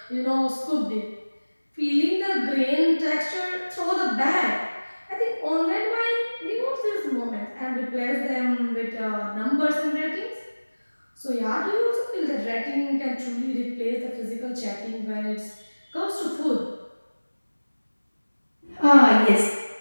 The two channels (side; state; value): both; inverted; correlation -1.00